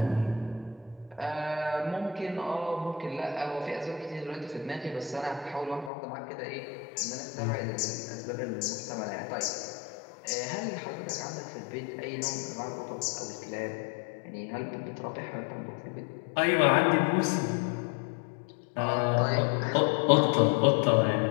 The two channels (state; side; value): drops out; right; at 5.9 s